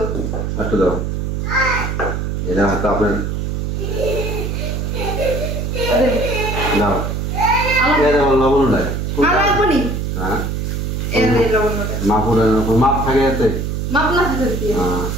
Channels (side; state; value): right; noise; hum, 2 dB below the sound